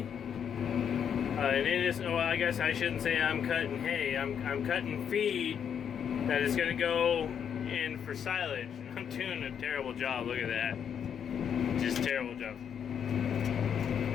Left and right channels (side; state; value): right; quieter; 8.1 dB